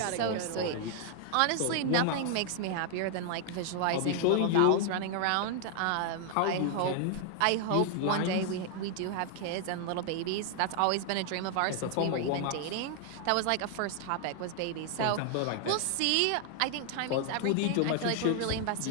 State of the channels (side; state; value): both; different; correlation 0.00